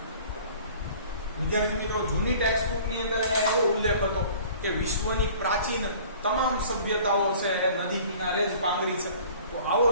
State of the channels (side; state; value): both; inverted; correlation -0.48